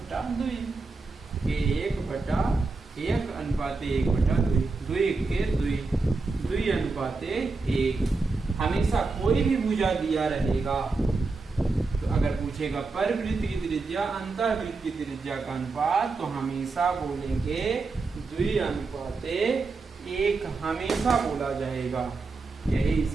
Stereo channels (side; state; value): left; quieter; 3.9 dB